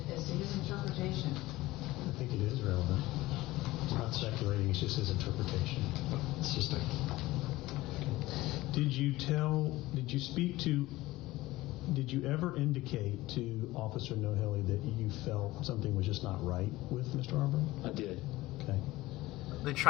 as to his interpretation. I think it is relevant. It's not speculating. It's just his interpretation. It's just a. Did you ever indicate to Officer Nohilly that you felt something was just not right with Mr. Arbery? I did. Okay. They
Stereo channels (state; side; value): quieter; right; 18.2 dB